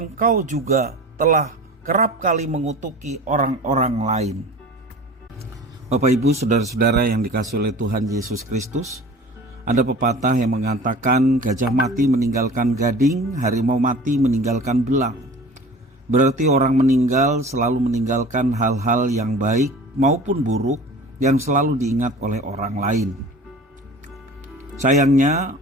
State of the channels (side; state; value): both; normal; correlation 0.41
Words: juga telah kerap kali mengutuki orang-orang lain. Bapak Ibu, saudara-saudara yang dikasihi oleh Tuhan Yesus Kristus, ada pepatah yang mengatakan gajah mati meninggalkan gading, harimau mati meninggalkan belang. Berarti orang meninggal selalu meninggalkan hal-hal yang baik maupun buruk yang selalu diingat oleh orang lain. Sayangnya,